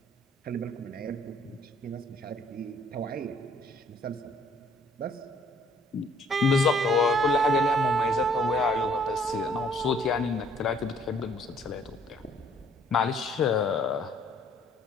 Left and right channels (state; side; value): normal; both; correlation 0.61